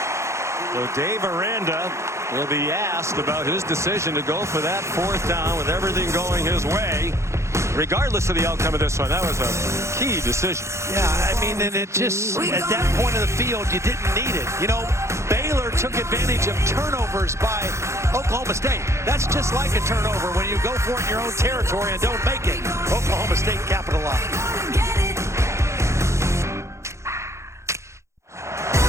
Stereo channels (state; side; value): late; left; 0.14 ms